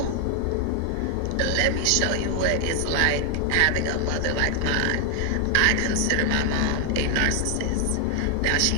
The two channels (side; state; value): both; different; correlation 0.00